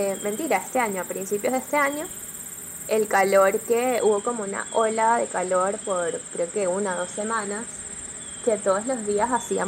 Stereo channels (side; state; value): both; identical; correlation 1.00